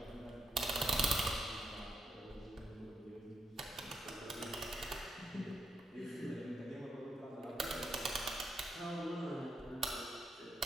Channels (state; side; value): normal; both; correlation 0.80